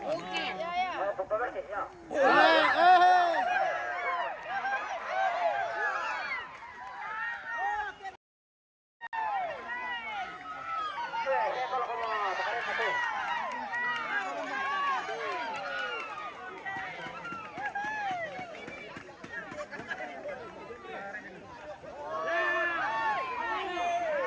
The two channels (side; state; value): both; identical; correlation 1.00